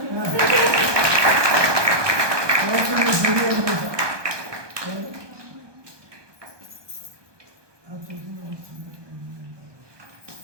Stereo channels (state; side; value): late; left; 1.2 ms